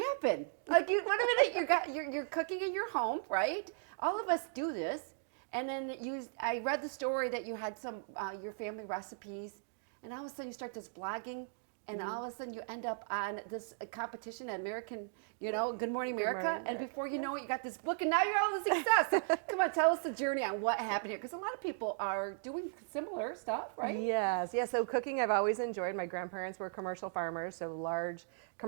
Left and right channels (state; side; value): silent; left; digital silence